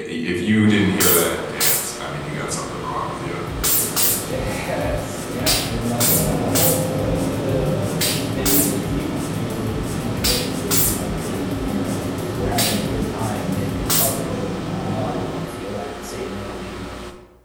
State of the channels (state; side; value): identical; both; correlation 1.00